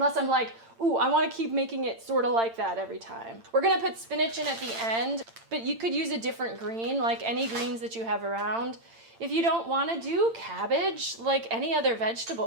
I'm like, ooh, I want to keep making it sort of like that every time. We're going to put spinach in at the end, but you could use a different green, like any greens that you have around. If you don't want to do cabbage, like any other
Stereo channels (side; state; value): left; late; 8.8 ms